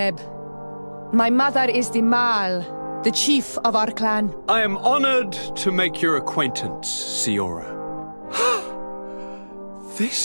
My mother is the Mal, the chief of our clan. I am honored to make your acquaintance, Siora.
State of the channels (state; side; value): inverted; both; correlation -1.00